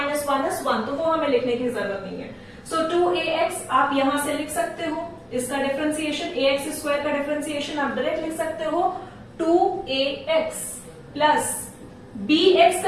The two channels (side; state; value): both; identical; correlation 1.00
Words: is 1, तो वो हमें लिखने की जरूरत नहीं है। सो 2ax आप यहां से लिख सकते हो, इसका डिफरेंशिएशन ax² का डिफरेंशिएशन आप डायरेक्ट लिख सकते हो 2ax प्लस bx